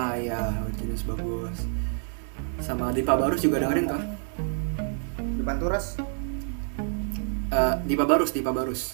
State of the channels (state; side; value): silent; left; 60 dB below the other